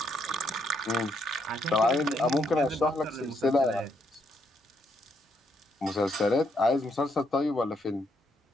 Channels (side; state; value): both; normal; correlation 0.74